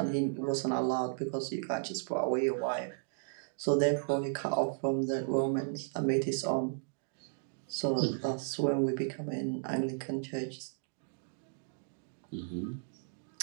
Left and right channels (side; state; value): left; silent; digital silence